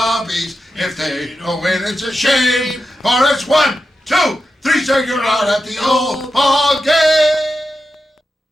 If they don't win, it's a shame. For it's 1, 2, 3, so you're out at the old ball game.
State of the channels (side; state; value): both; normal; correlation 0.89